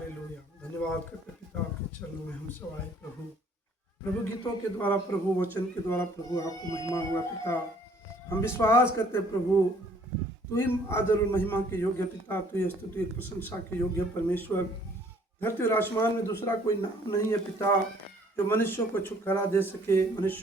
धन्यवाद करते पिता आपके चरणों में हम सब आए प्रभु। प्रभु गीतों के द्वारा, प्रभु वचन के द्वारा प्रभु आपको महिमा हुआ पिता। हम विश्वास करते प्रभु, तू ही आदर और महिमा के योग्य पिता, तू ही स्तुति प्रशंसा के योग्य परमेश्वर। धरती और आसमान में दूसरा कोई नाम नहीं है पिता जो मनुष्यों को छुटकारा दे सके,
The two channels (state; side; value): normal; both; correlation 0.59